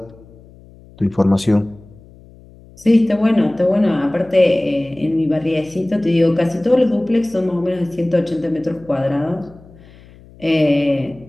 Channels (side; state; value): left; noise; hum, 24 dB below the sound